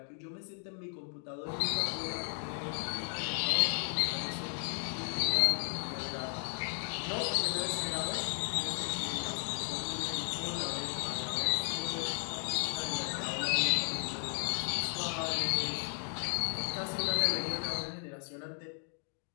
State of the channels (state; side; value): silent; right; 54 dB below the other